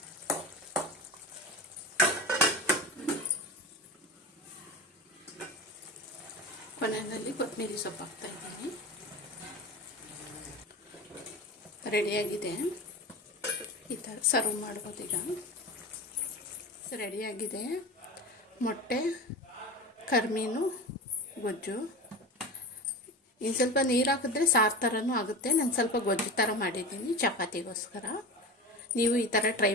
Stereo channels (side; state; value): both; normal; correlation 0.27